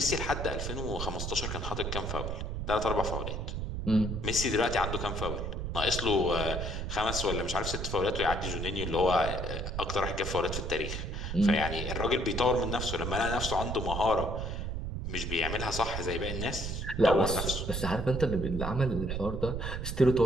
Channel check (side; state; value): right; noise; rumble, 4 dB below the sound